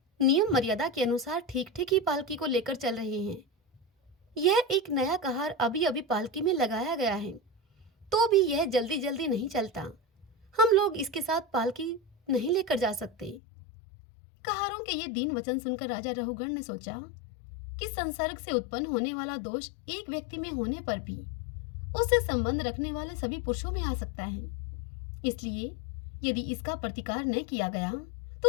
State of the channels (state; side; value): drops out; right; at 13.4 s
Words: नियम मर्यादा के अनुसार ठीक ठीक ही पालकी को लेकर चल रहे हैं। यह एक नया कहार अभी अभी पालकी में लगाया गया है, तो भी यह जल्दी जल्दी नहीं चलता, हम लोग इसके साथ पालकी नहीं लेकर जा सकते। कहारों के ये दीन वचन सुनकर राजा रहुगण ने सोचा कि संसर्ग से उत्पन्न होने वाला दोष एक व्यक्ति में होने पर भी उससे संबंध रखने वाले सभी पुरुषों में आ सकता है, इसलिए यदि इसका प्रतिकार न किया गया